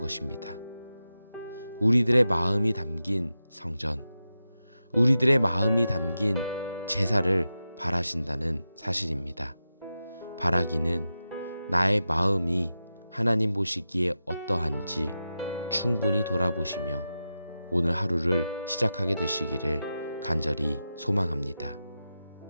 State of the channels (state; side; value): inverted; both; correlation -0.91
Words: 우리들의 마음이 담긴 성전, 우리들의 마음이 담긴 제사를 바라신다는 사실입니다. 바라기는 나의 마음이 하나님 보시기에 어떠한지 충분히 돌아보시며 오늘 하루를 시작하게 되시기를 간절히 소망합니다.